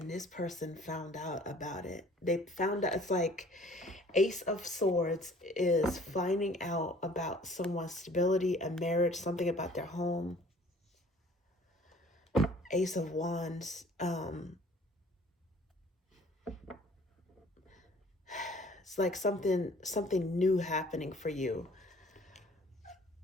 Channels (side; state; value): both; normal; correlation 0.53